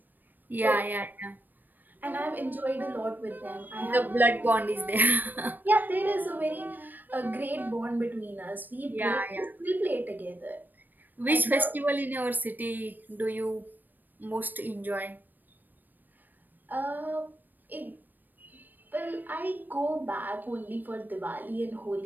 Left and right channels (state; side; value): late; left; 0.090 ms